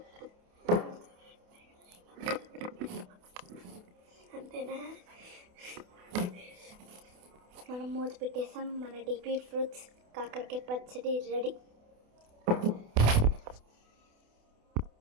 అంతేనా? మనం మూత పెట్టేసాం. మన డీపీ ఫ్రూట్స్ కాకరకాయ పచ్చడి రెడీ.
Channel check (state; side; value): late; left; 28 ms